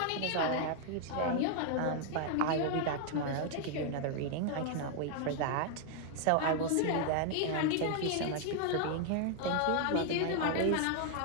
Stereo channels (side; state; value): both; different; correlation 0.00